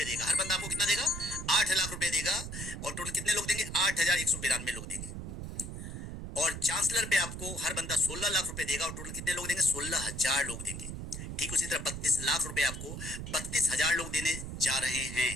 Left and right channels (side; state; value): right; noise; rumble, 7 dB below the sound